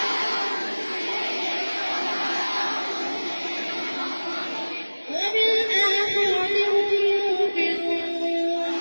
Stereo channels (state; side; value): inverted; both; correlation -1.00